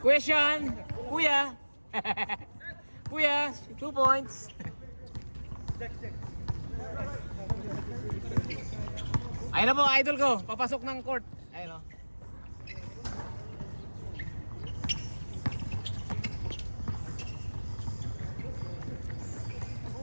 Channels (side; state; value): both; inverted; correlation -1.00